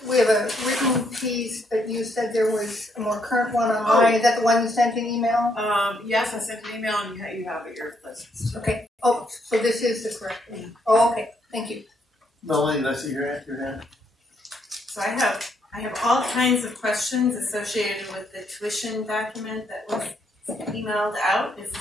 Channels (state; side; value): normal; both; correlation 0.74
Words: we have a written piece, but you said there was a more current one online. Is that the one you sent an email? Yes, I sent an email and you have it your list. Okay. Oh, so this is the correct one. Oh, okay. Thank you. Melanie, did I see your hand? So I have all kinds of questions associated with the tuition document that was emailed out. Is